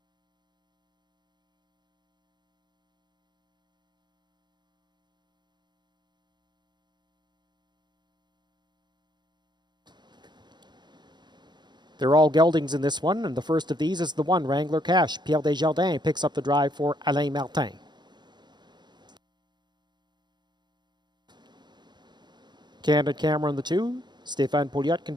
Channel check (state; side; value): late; left; 0.21 ms